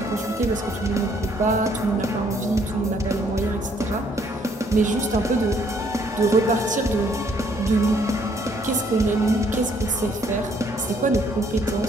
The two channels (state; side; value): normal; both; correlation 0.65